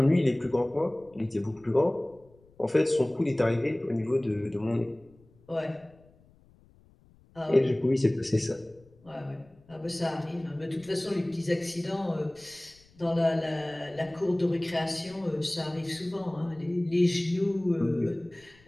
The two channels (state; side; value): noise; left; rumble, 29 dB below the sound